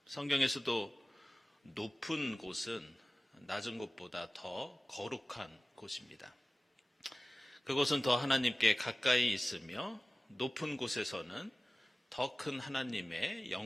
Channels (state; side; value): normal; both; correlation 0.97